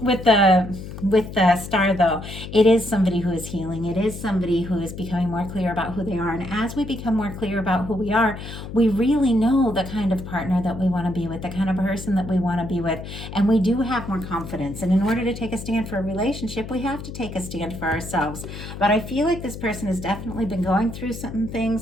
the star though, it is somebody who is healing. It is somebody who is becoming more clear about who they are. And as we become more clear about who we are, we really know the kind of partner that we want to be with, the kind of person that we want to be with. And we do have more confidence. And in order to take a stand for a relationship, we have to take a stand for ourselves. But I feel like this person has definitely been going through some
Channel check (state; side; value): noise; left; hum, 10 dB below the sound